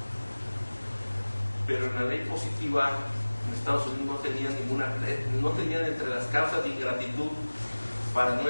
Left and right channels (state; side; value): inverted; both; correlation -1.00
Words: pero en la ley positiva en Estados Unidos no tenían entre las causas de ingratitud para no